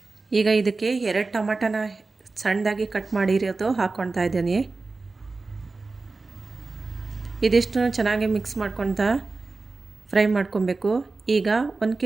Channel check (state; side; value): quieter; left; 3.7 dB